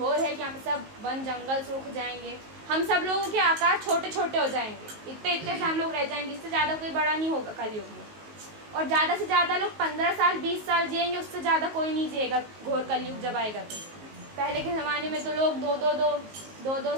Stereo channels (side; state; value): left; late; 19 ms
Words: है कि यहाँ पे सब वन जंगल सूख जाएंगे, हम सब लोगों के आकार छोटे छोटे हो जाएंगे, इतने इतने से हम लोग रह जाएंगे, इससे ज़्यादा कोई बड़ा नहीं होगा कलयुग में। और ज़्यादा से ज़्यादा लोग 15 साल 20 साल जिएंगे, उससे ज़्यादा कोई नहीं जिएगा घोर कलयुग जब आएगा तो। पहले के ज़माने में तो लोग